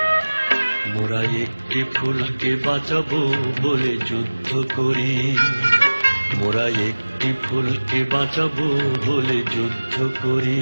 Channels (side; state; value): both; inverted; correlation -1.00